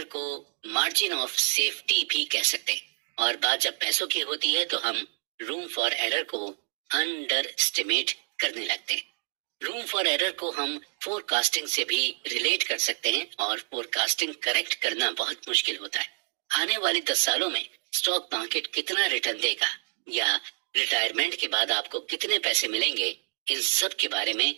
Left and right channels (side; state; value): left; silent; 59 dB below the other